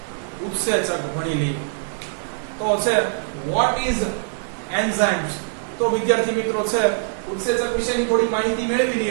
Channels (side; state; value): left; silent; digital silence